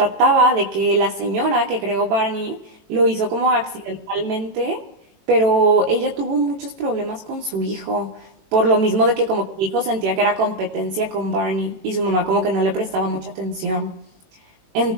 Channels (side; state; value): left; late; 18 ms